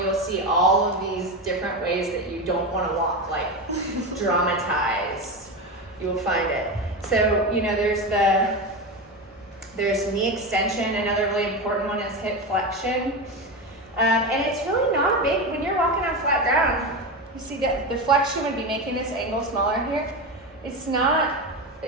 you'll see all of these different ways that you don't want to walk, like dramatized. You will find it. So, there's knee extension. Another really important one is hip flexion. And it's really not big when you're walking on flat ground. You see that the flexion would be making this angle smaller here. It's not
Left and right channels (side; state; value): both; normal; correlation 0.19